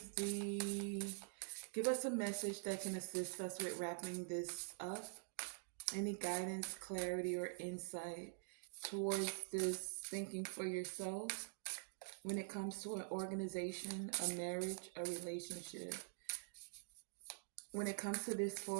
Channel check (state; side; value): silent; left; digital silence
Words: give us a message that can assist us with wrapping this up? Any guidance, clarity, or insight towards this thinking for yourself when it comes to an organization, a marriage, a relationship, when it comes to this